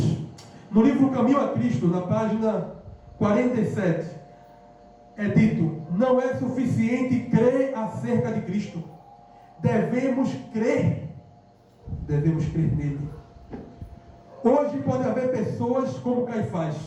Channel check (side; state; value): both; identical; correlation 1.00